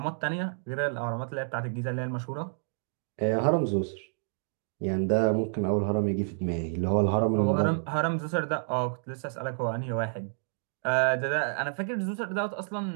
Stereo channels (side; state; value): left; silent; digital silence